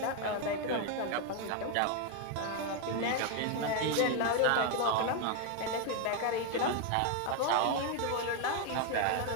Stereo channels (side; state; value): both; different; correlation 0.01